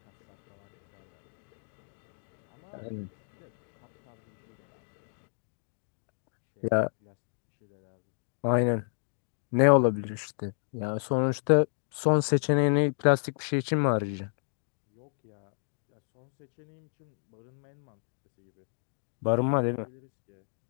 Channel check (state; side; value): silent; right; digital silence